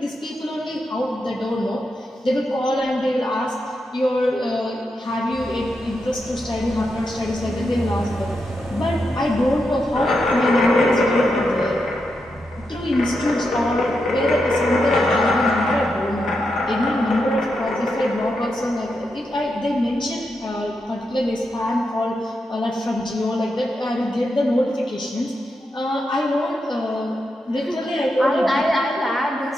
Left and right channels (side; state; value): both; normal; correlation 0.85